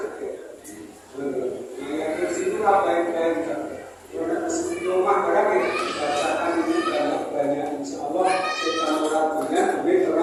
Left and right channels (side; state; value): both; identical; correlation 1.00